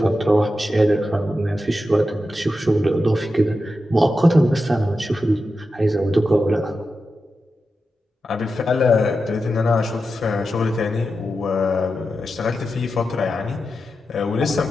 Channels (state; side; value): normal; both; correlation 0.90